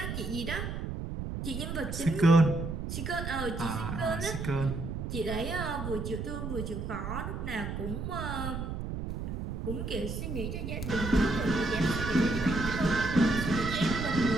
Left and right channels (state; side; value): noise; right; rumble, 5 dB below the sound